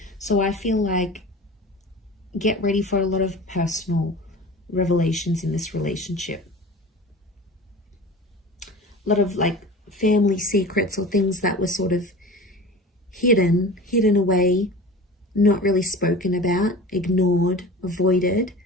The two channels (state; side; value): normal; both; correlation 0.36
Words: So I feel like get ready for a lot of personal revelations in this relationship. A lot of like family secrets or things that were sort of hidden away, not really spoken about, ignored, avoided.